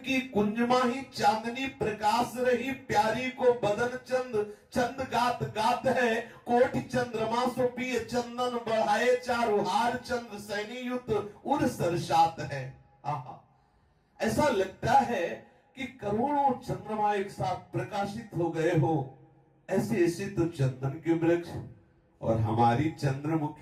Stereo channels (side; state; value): both; identical; correlation 1.00